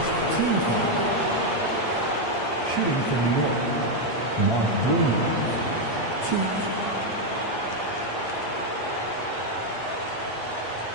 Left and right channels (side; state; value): right; late; 8.5 ms